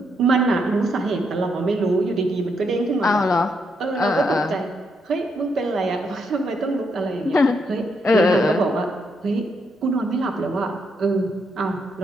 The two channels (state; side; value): normal; both; correlation 0.78